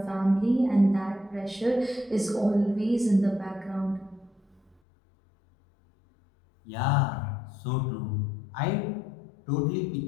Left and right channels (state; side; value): drops out; right; at 4.8 s